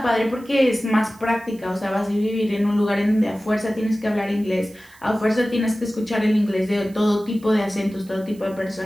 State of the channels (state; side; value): noise; right; hiss, 26 dB below the sound